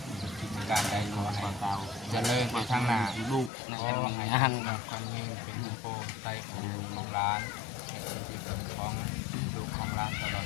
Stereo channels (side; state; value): right; drops out; at 3.5 s